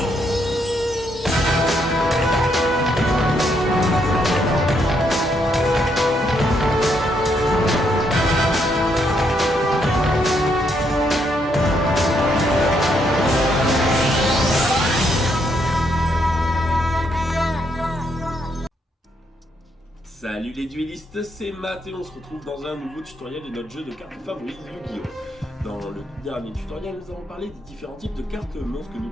Salut les duellistes, c'est Matt et on se retrouve dans un nouveau tutoriel de notre jeu de cartes favori Yu-Gi-Oh! Dans le dernier tutoriel, nous avons parlé des différents types de cartes monstres que nous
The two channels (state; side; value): normal; both; correlation 0.75